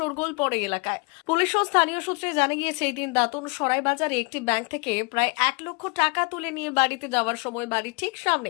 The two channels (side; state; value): right; quieter; 31.0 dB